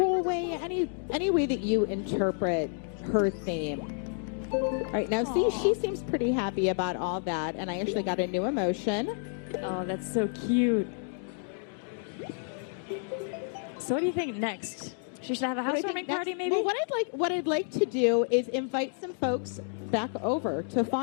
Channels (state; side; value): silent; right; 56 dB below the other